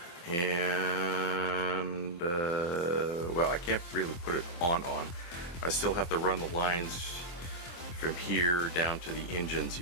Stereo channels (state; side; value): late; right; 23 ms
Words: And well, I can't really put it on. I still have to run the lines from here down to the engines